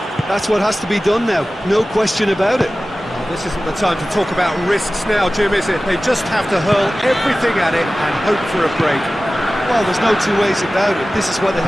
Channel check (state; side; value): normal; both; correlation 0.96